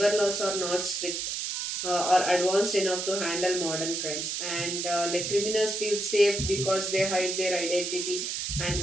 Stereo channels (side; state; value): right; noise; hiss, 3 dB below the sound